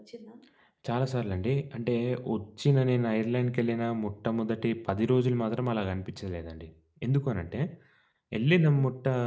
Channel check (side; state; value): both; identical; correlation 1.00